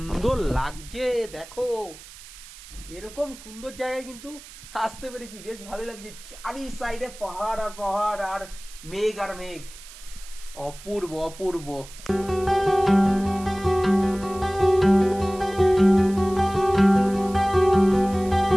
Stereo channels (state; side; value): noise; right; hiss, 18 dB below the sound